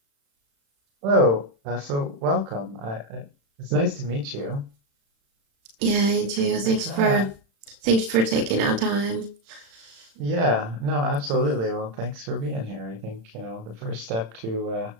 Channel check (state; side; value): late; left; 35 ms